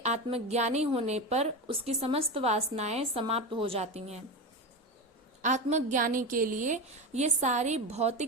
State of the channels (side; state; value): both; normal; correlation 0.20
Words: आत्मज्ञानी होने पर उसकी समस्त वासनाएं समाप्त हो जाती हैं। आत्मज्ञानी के लिए ये सारी